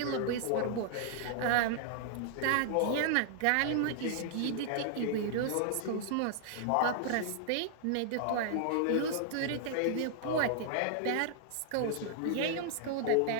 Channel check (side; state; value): both; different; correlation -0.01